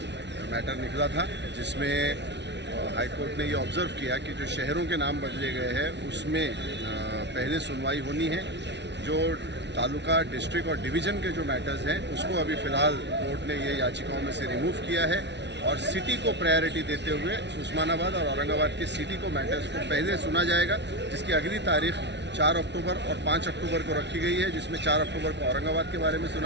मैटर निकला था, जिसमें हाई कोर्ट ने ये ऑब्ज़र्व किया कि जो शहरों के नाम बदले गए हैं उसमें पहले सुनवाई होनी है। जो तालुका, डिस्ट्रिक्ट और डिवीज़न के जो मैटर्स हैं उसको अभी फ़िलहाल कोर्ट ने ये याचिकाओं में से रिमूव किया है और सिटी को प्रायोरिटी देते हुए उस्मानाबाद और औरंगाबाद के सिटी को मैटर्स को पहले सुना जाएगा, जिसकी अगली तारीख 4 अक्टूबर और 5 अक्टूबर को रखी गई है, जिसमें 4 अक्टूबर को औरंगाबाद के बारे में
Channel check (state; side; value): late; left; 0.51 ms